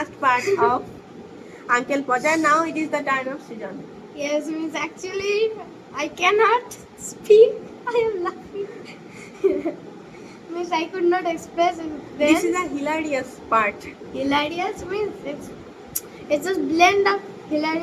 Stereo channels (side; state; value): both; identical; correlation 1.00